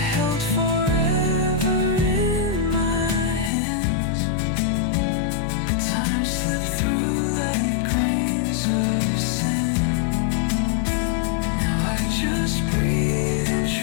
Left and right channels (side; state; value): right; drops out; at 3.5 s